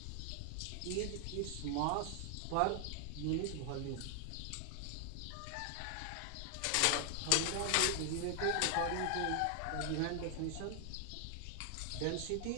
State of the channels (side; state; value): both; different; correlation 0.00